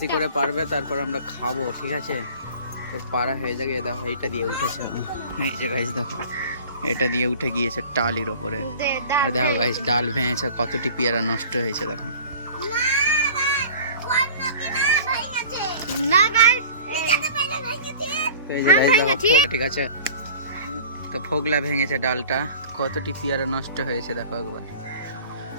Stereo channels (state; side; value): inverted; both; correlation -0.43